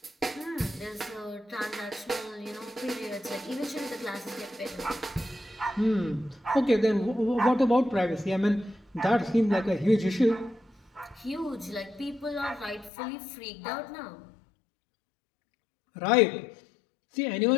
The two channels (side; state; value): right; drops out; at 12.9 s